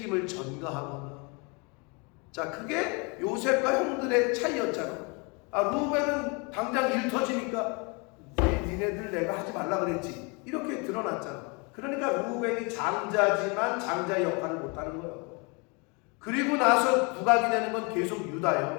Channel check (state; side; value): quieter; right; 30.9 dB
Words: 전가하거나. 자, 그게 요셉과 형들의 차이였잖아. 루벤은 당장 일 터지니까 니네들 내가 하지 말라 그랬지, 이렇게 드러났잖아. 그러니까 루벤이 장자지만 장자의 역할을 못하는 거예요. 그리고 나서 부각이 되는 건 계속